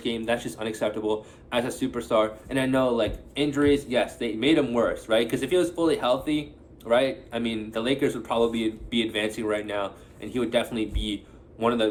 game. That's just unacceptable as a superstar. And I know, injuries, yes, they made him worse, right? Because if he was fully healthy, right, I mean, the Lakers would probably be advancing right now, and he would definitely be one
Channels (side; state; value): both; identical; correlation 1.00